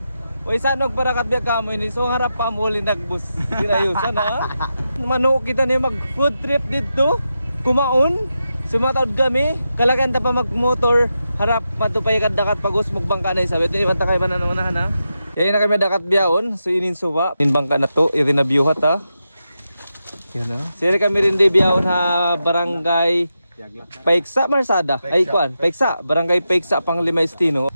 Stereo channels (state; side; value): inverted; both; correlation -0.88